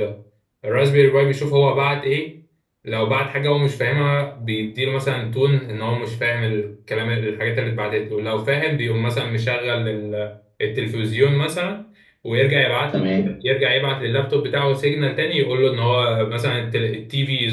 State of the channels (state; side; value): identical; both; correlation 1.00